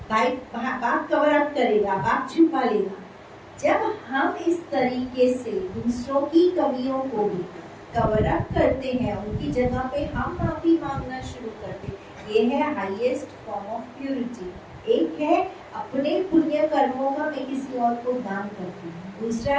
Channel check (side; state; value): both; identical; correlation 1.00